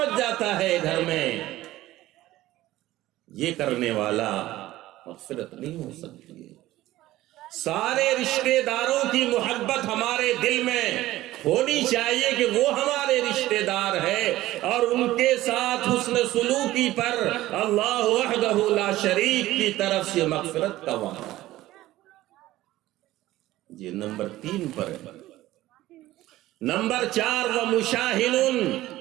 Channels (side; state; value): left; quieter; 16.0 dB